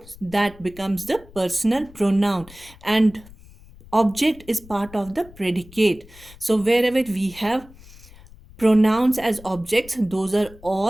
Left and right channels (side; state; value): left; noise; rumble, 21 dB below the sound